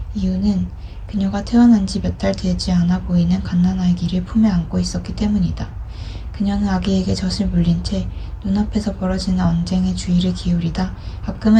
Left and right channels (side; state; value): both; identical; correlation 1.00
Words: 이유는 그녀가 태어난 지 몇 달 되지 않아 보이는 갓난아기를 품에 안고 있었기 때문이다. 그녀는 아기에게 젖을 물린 채 눈앞에서 벌어지는 언쟁에 주의를 기울이다